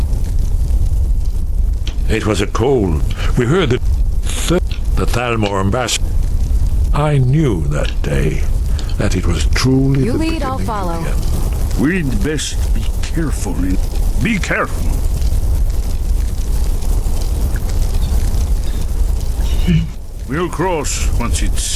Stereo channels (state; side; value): identical; both; correlation 1.00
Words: It was a cold. We heard the Thalmor ambassador. I knew that day that it was truly You the lead, I'll beginning follow. of the end. We'd best be careful. Be careful. We'll cross once it's